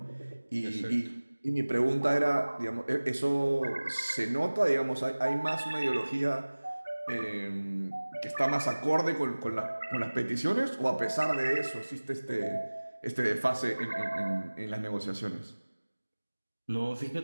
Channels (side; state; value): both; inverted; correlation -1.00